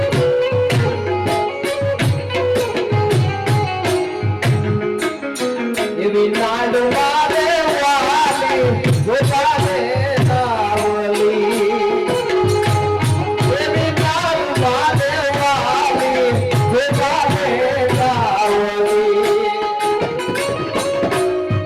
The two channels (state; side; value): identical; both; correlation 1.00